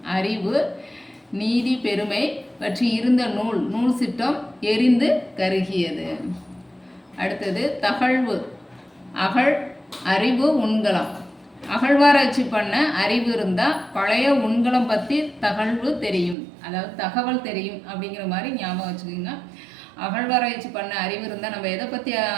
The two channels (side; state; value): left; drops out; at 16.4 s